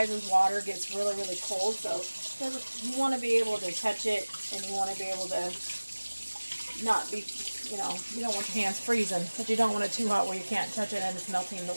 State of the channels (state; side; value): inverted; both; correlation -1.00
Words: water gets really cold, so you want to be able to touch it, and you want to be able to not be, you don't want your hands freezing, but you don't want it too hot where you can't touch it and it's melting the